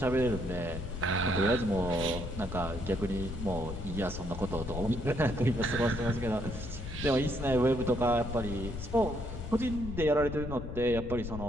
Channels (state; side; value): noise; left; rumble, 7 dB below the sound